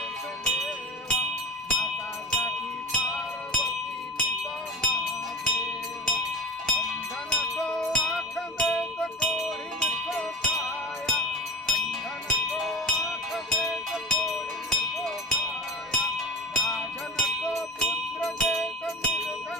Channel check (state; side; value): normal; both; correlation 0.36